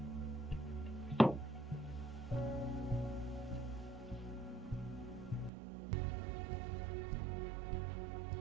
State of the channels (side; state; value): left; drops out; at 5.5 s